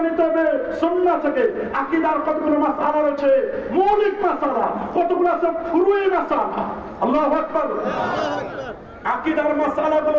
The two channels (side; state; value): both; identical; correlation 1.00